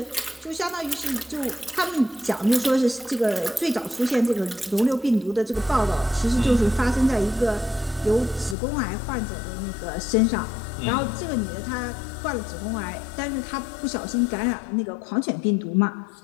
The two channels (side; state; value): right; drops out; at 8.6 s